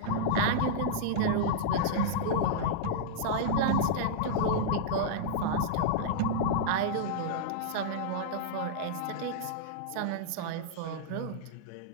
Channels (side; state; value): both; different; correlation -0.01